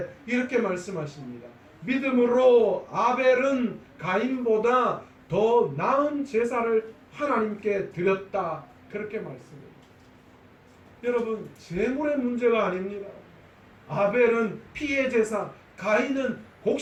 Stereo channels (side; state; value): both; identical; correlation 1.00